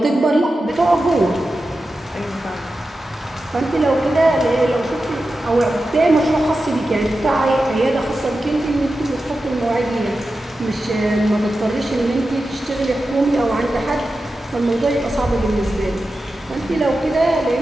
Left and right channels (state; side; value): normal; both; correlation 0.92